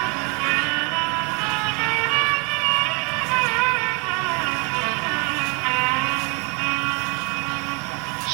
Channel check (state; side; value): quieter; left; 32.2 dB